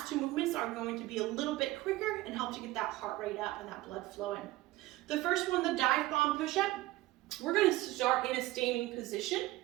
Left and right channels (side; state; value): left; quieter; 17.9 dB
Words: 2 movements are going to be a little bit quicker and help to get that heart rate up and that blood flowing. The first one, the dive bomb push-up, we're going to start in a standing position.